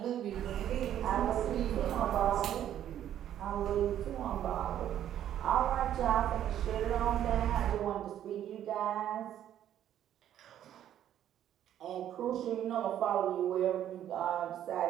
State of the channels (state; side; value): quieter; left; 11.0 dB